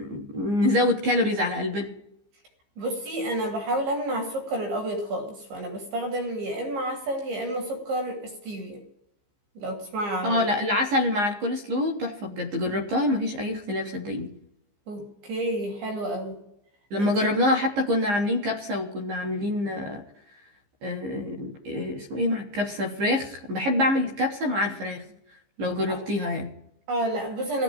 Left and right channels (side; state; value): left; late; 15 ms